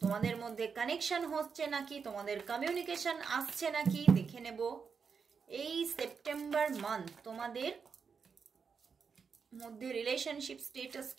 তোমাদের মধ্যে কানেকশন হচ্ছে নাকি, তোমাদের কমিউনিকেশন আসছে নাকি, দেখে নেব এই সেপ্টেম্বর মান্থ তোমাদের মধ্যে রিলেশনশিপ স্টেটাস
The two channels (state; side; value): quieter; left; 5.9 dB